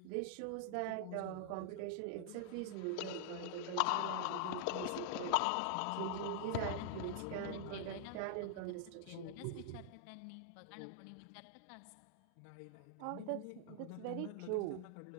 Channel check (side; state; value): both; different; correlation -0.01